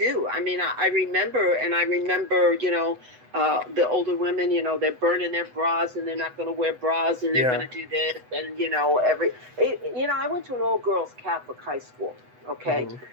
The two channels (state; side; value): late; left; 8.0 ms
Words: mean, I remember, the older women, they're burning their bras and they're not going to wear bras and they're going to do this. And, I went to an all-girls Catholic high school, okay?